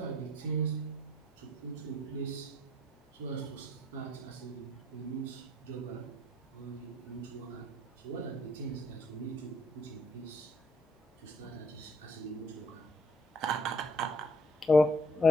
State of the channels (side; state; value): both; normal; correlation 0.64